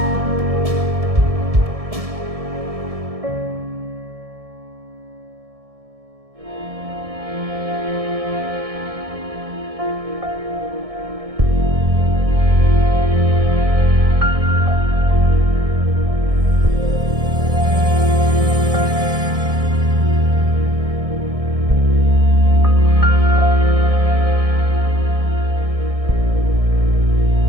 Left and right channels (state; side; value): late; left; 1.7 ms